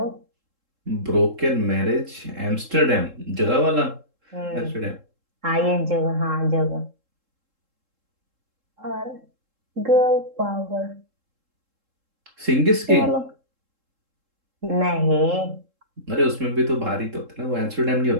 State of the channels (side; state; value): left; late; 3.7 ms